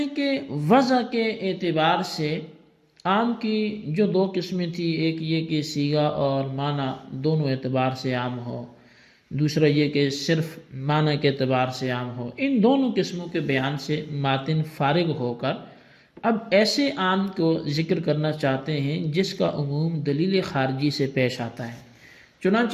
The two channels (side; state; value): both; identical; correlation 1.00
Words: کہ وضع کے اعتبار سے عام کی جو دو قسمیں تھی، ایک یہ کہ صیغہ اور معنی دونوں اعتبار سے عام ہو، دوسرا یہ کہ صرف معنی کے اعتبار سے عام ہو، ان دونوں قسموں کے بیان سے ماتن فارغ ہو کر اب ایسے عام کو ذکر کرنا چاہتے ہیں جس کا عموم دلیل خارجی سے پیش آتا ہے۔